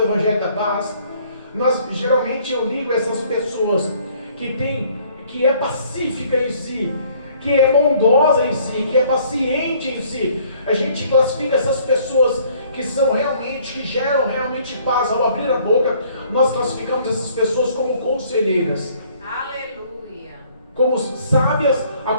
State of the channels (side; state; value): both; inverted; correlation -0.60